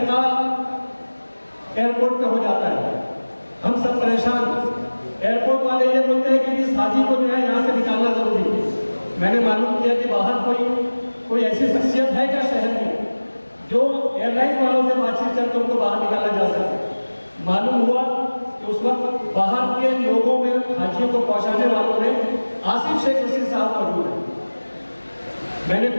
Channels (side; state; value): both; inverted; correlation -1.00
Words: एयरपोर्ट पे हो जाता है, हम सब परेशान। एयरपोर्ट वाले ये बोलते हैं कि इस हाजी को जो है यहाँ से निकालना जरूरी है। मैंने मालूम किया कि बाहर कोई ऐसी शख्सियत है क्या शहर में जो एयरलाइन वालों से बातचीत करके उनको बाहर निकाला जा सके। मालूम हुआ कि उस वक्त बाहर के लोगों में हाजियों को पहुंचाने वालों में आसिफ शेख रशीद साहब मौजूद है। मैंने